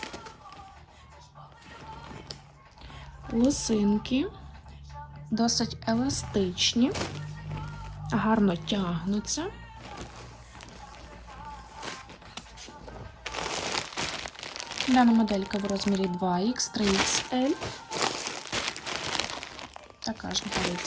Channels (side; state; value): both; identical; correlation 1.00